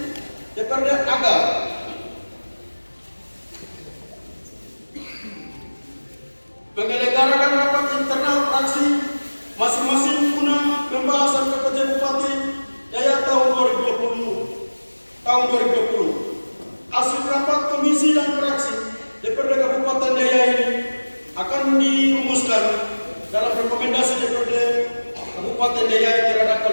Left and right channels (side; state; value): both; inverted; correlation -1.00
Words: DPRD agar menyelenggarakan rapat internal fraksi masing-masing guna pembahasan kerja Bupati Daya tahun 2020. Hasil rapat komisi dan fraksi DPRD Kabupaten Daya ini akan dirumuskan dalam rekomendasi DPRD Kabupaten Daya terhadap